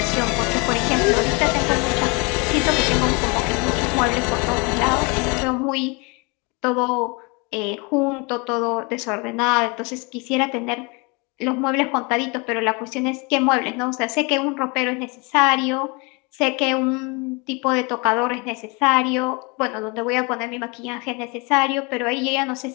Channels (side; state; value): right; quieter; 29.4 dB